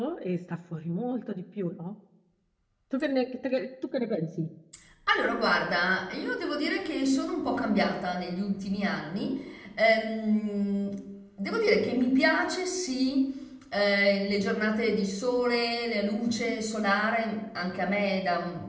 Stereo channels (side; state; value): both; identical; correlation 1.00